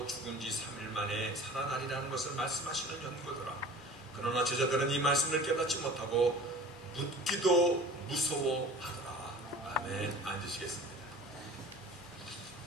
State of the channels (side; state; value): both; normal; correlation 0.42